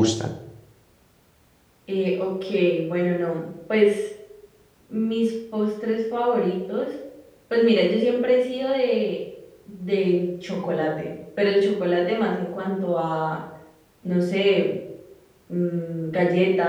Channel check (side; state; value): both; identical; correlation 1.00